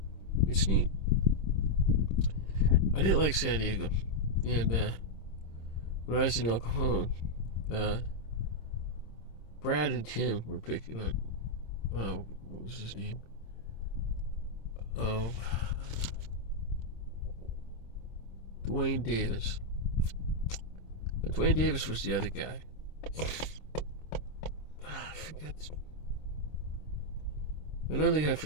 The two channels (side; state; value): right; late; 26 ms